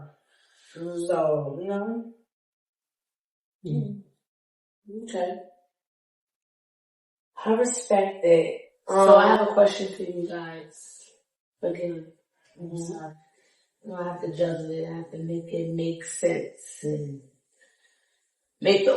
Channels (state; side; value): identical; both; correlation 1.00